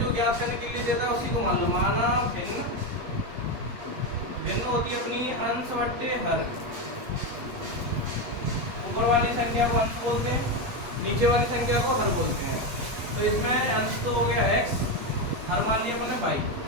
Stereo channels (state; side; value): late; left; 8.4 ms